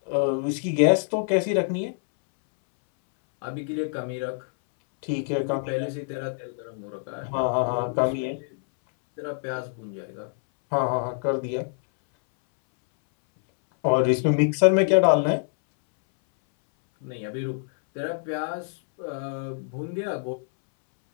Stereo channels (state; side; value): silent; right; 61 dB below the other